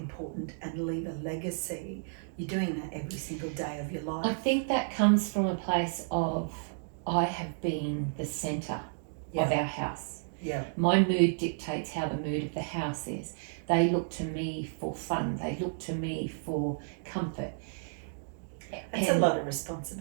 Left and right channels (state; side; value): silent; left; digital silence